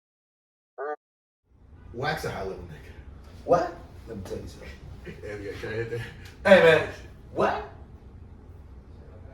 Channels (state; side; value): identical; both; correlation 1.00